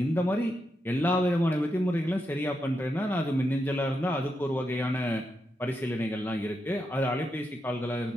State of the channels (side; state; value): both; normal; correlation 0.85